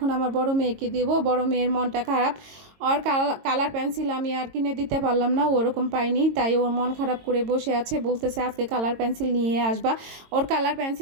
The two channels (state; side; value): late; left; 22 ms